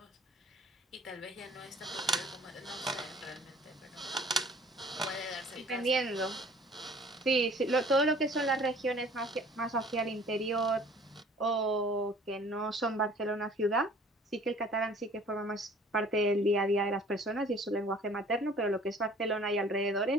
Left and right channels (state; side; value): normal; both; correlation 0.51